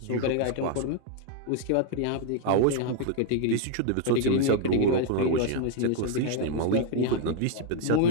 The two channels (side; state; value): both; different; correlation 0.01